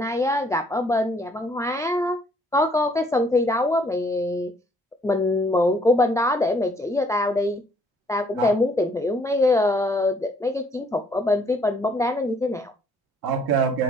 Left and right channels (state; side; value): normal; both; correlation 0.63